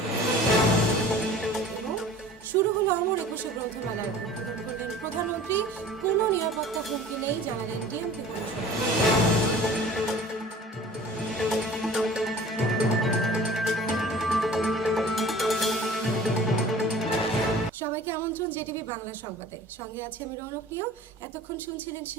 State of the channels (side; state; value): both; normal; correlation 0.45